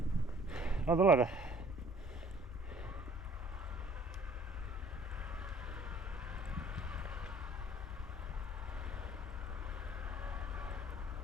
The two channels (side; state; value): both; normal; correlation 0.54